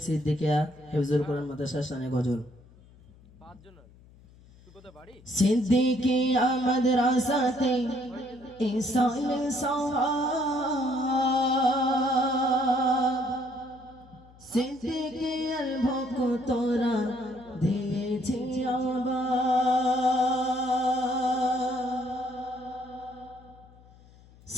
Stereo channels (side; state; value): left; noise; hum, 25 dB below the sound